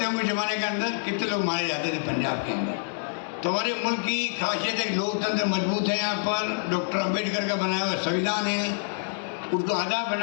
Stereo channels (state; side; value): silent; right; 60 dB below the other